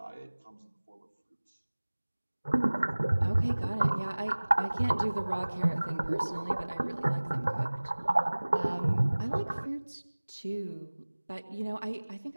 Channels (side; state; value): both; inverted; correlation -1.00